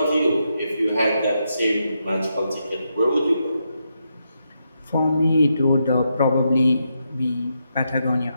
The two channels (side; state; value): both; inverted; correlation -0.82